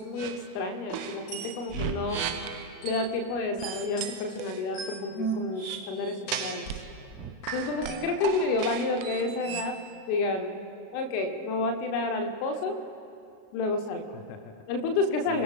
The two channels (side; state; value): right; late; 37 ms